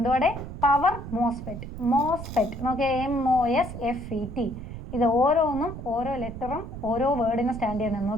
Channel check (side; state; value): right; noise; rumble, 10 dB below the sound